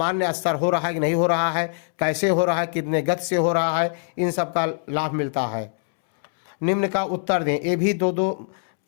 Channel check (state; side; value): silent; right; 63 dB below the other